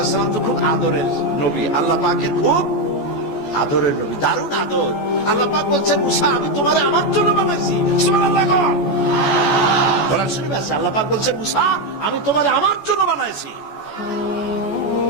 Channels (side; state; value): right; late; 14 ms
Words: সালাম তো খুব আদরের নবী, আল্লাহ পাকের খুব আদরের নবী, দারুণ আদর। আল্লাহ পাক বলছেন মুসা আমি তোমারে আমার জন্য বানাইছি। সুবহানাল্লাহ। কোরআন শরীফে আছে আল্লাহ পাক বলছেন মুসা আমি তোমারে আমার জন্য বানাইছি।